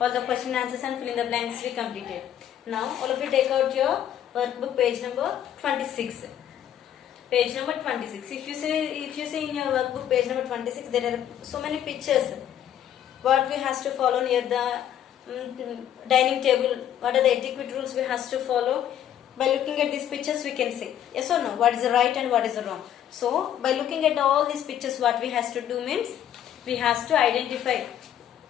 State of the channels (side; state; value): right; quieter; 10.5 dB